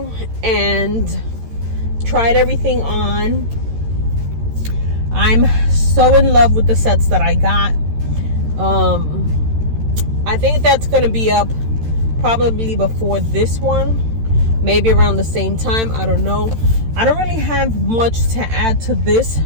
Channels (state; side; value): late; left; 13 ms